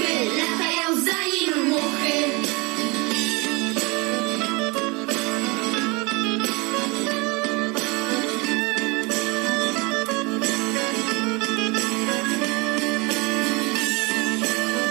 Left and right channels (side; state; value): left; quieter; 27.2 dB